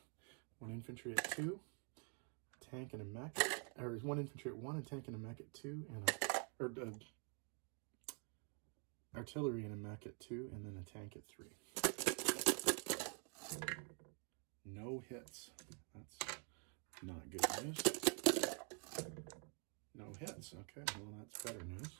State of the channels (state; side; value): quieter; left; 40.0 dB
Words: 1 infantry at 2, a tank and a mech, or 1 infantry at 1, a tank and a mech at 2, and artillery and a mech at 2, and then a tank at 3. No hits. That's not good news. No hits. Okay, well that's better